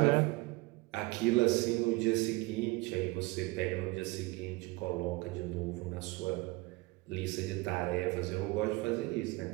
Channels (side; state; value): left; quieter; 23.2 dB